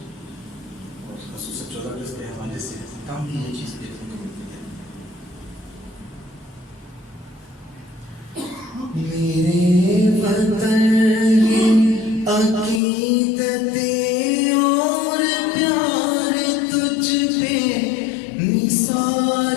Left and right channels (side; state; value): right; drops out; at 12.8 s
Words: اور خصوصاً 14 اگست کے حوالے سے کام بھی یہ چیز دیکھنے کو ملتی ہے۔ میرے وطن یہ عقیدتیں اور پیار تجھ پہ